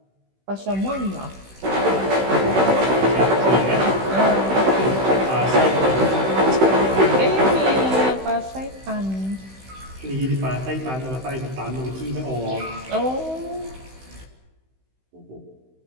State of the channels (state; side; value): late; left; 16 ms